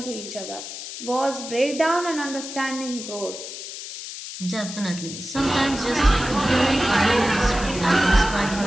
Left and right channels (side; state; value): left; noise; hiss, 10 dB below the sound